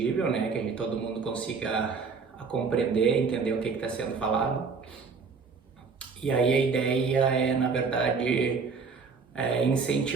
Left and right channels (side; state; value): left; quieter; 5.1 dB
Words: né? Que todo mundo consiga compreender, entender o que está sendo falado. E aí a ideia é, na verdade,